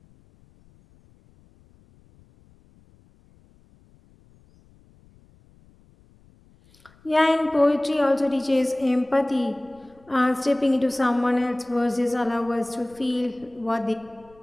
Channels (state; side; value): noise; left; rumble, 30 dB below the sound